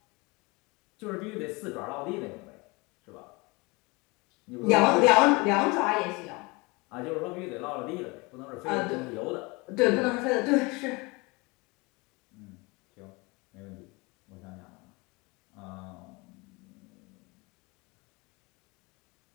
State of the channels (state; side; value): quieter; right; 26.2 dB